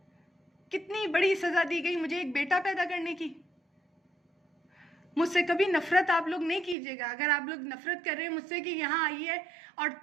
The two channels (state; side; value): drops out; left; at 6.8 s